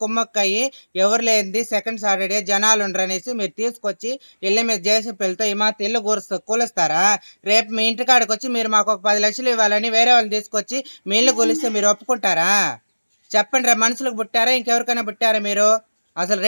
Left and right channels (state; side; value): inverted; both; correlation -1.00